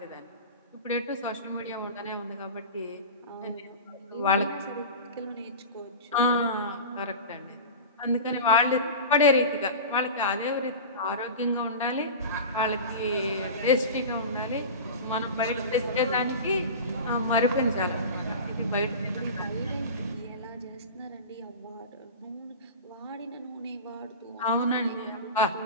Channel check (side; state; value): both; inverted; correlation -0.30